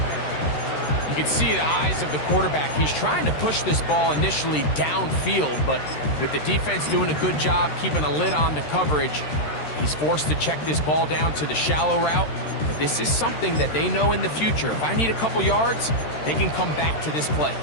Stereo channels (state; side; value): late; right; 13 ms